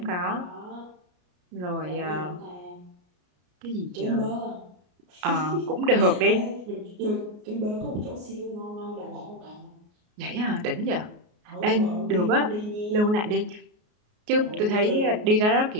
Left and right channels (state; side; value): late; left; 33 ms